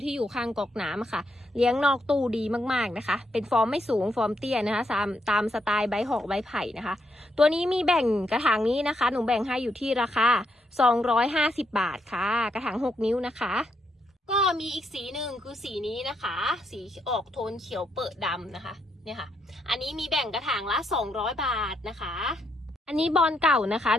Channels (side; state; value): both; normal; correlation 0.78